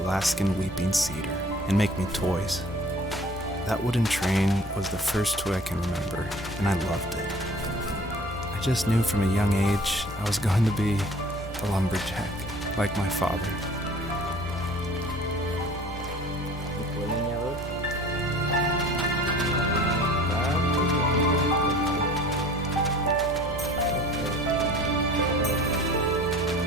weeping cedar and make me toys. That wooden train was the first toy I can remember, and I loved it. I just knew from a young age I was going to be a lumberjack, like my father.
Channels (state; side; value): normal; both; correlation 0.48